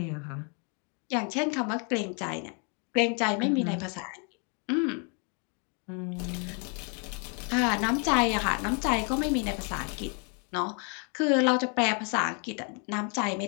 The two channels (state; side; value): quieter; right; 37.7 dB